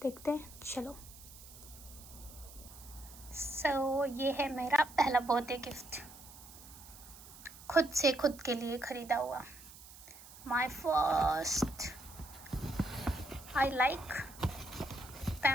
देखते हैं. चलो. सो ये है मेरा पहला बर्थडे गिफ्ट, खुद से खुद के लिए खरीदा हुआ. My first. I like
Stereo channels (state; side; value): noise; right; hiss, 18 dB below the sound